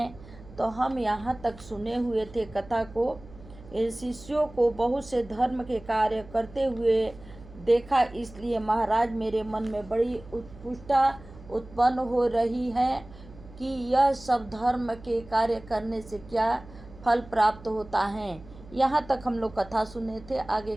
तो हम यहाँ तक सुने हुए थे कथा को। शिष्यों को बहुत से धर्म के कार्य करते हुए देखा, इसलिए महाराज मेरे मन में बड़ी उत्पुष्टता उत्पन्न हो रही है कि यह सब धर्म के कार्य करने से क्या फल प्राप्त होता है। यहाँ तक हम लोग कथा सुने थे। आगे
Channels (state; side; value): noise; right; hum, 19 dB below the sound